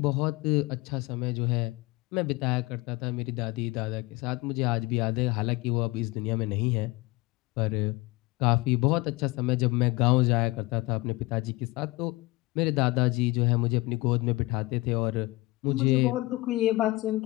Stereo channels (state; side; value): quieter; right; 21.9 dB